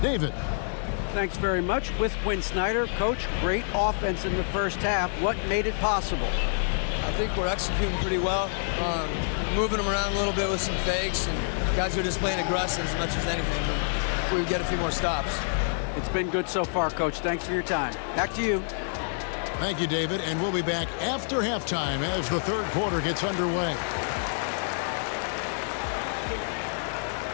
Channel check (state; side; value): silent; right; digital silence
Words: David. Thanks very much. With Quinn Snyder, Coach, great offense in the first half. What made it possible? I think we're executing pretty well. Moving them around a little bit with some fakes, and guys are just playing aggressive as much as anything. If we get a few more stops. It's been good so far, Coach. Thanks for your time. Back to you. Thank you, David. And we'll be back after halftime as the third quarter gets underway.